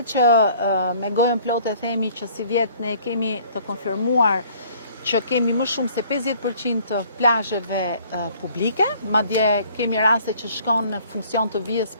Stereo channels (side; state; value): both; inverted; correlation -0.56